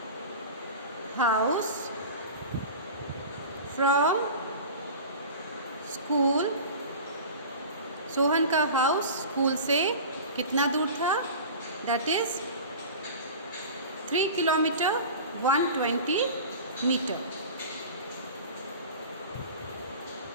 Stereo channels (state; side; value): inverted; both; correlation -0.35